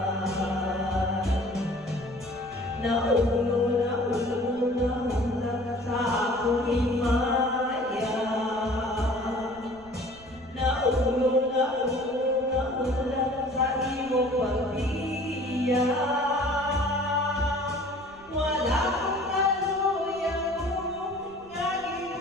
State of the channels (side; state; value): right; noise; rumble, 24 dB below the sound